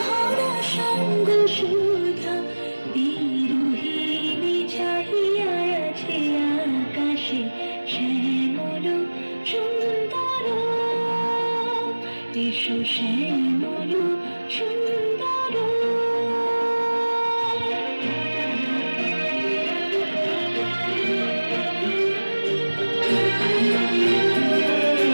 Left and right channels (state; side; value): inverted; both; correlation -1.00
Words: সঙ্গ সুধা বিরোহিণী চাহিয়া আছে আকাশে শ্যামল সুন্দর ইসু শ্যামল সুন্দর